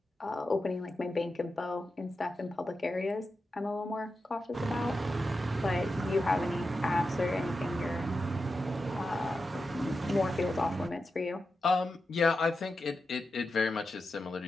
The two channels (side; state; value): both; normal; correlation 0.90